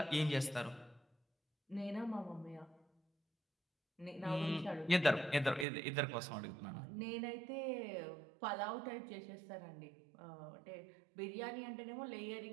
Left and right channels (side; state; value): left; drops out; at 5.7 s